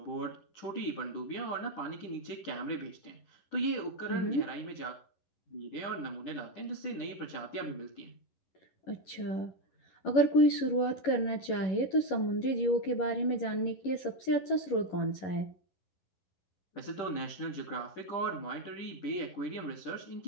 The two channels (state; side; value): late; right; 11 ms